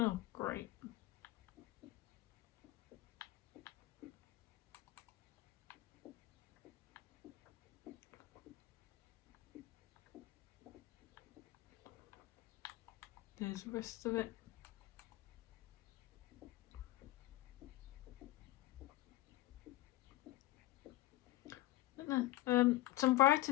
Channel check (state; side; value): quieter; right; 17.0 dB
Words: great. There's the rest of it. Some